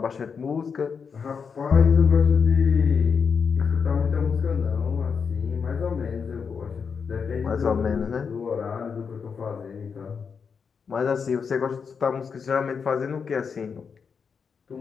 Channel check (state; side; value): quieter; right; 6.0 dB